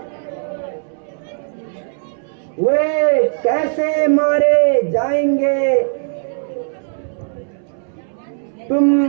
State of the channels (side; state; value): left; silent; 64 dB below the other